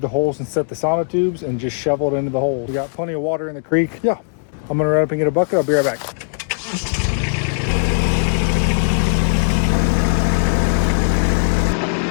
the holes and set the sonotubes and just shovel it into the holes. We got plenty of water in the creek. Yeah, I'm gonna run up and get a bucket. I'll be right back.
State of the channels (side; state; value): right; silent; 62 dB below the other